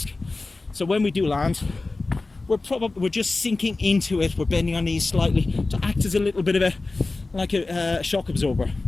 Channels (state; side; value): quieter; right; 3.4 dB